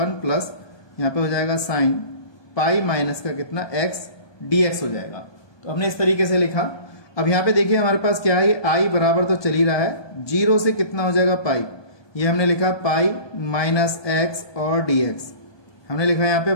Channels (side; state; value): right; late; 1.2 ms